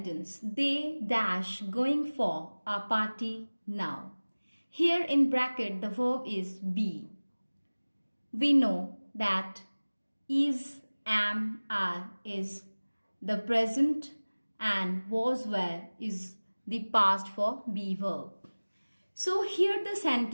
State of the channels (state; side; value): inverted; both; correlation -1.00